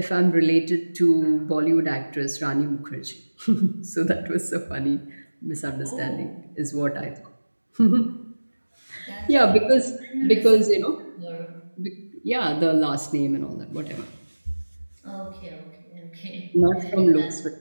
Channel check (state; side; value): inverted; both; correlation -1.00